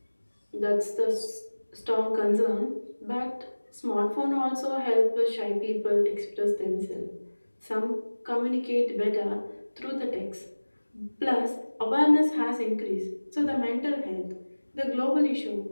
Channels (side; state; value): both; inverted; correlation -1.00